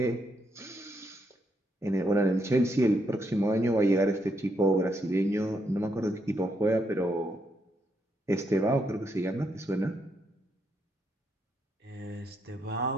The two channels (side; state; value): both; normal; correlation 0.78